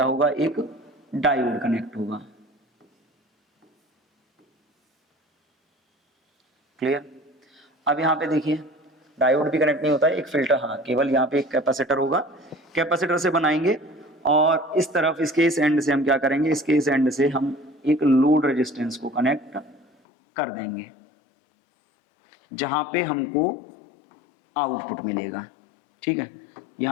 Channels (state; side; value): drops out; right; at 19.9 s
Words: होगा? एक डायोड कनेक्ट होगा। क्लियर? अब यहां पे देखिए डायोड भी कनेक्ट नहीं होता है, एक फिल्टर, हाँ, केवल यहाँ पे एक कैपेसिटर होगा। कैपेसिटर से बनाएंगे और इस तरफ इसके इस एंड से हम क्या करेंगे? इसके इस एंड से हम एक लोड रेजिस्टेंस को कनेक्ट कर देंगे जहां पे हमको आउटपुट मिलेगा। ठीक है,